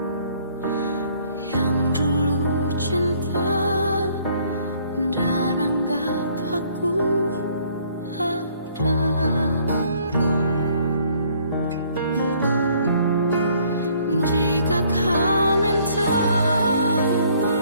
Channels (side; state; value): both; inverted; correlation -0.62